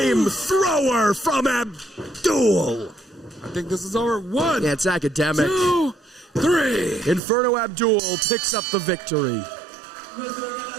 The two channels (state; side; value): drops out; left; at 7.2 s